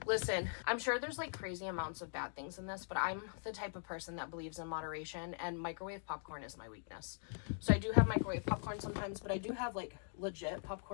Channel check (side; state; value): right; silent; digital silence